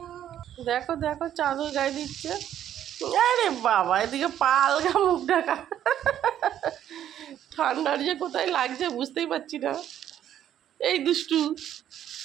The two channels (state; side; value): quieter; left; 10.8 dB